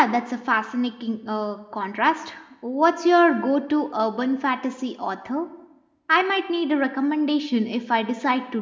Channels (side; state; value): both; identical; correlation 1.00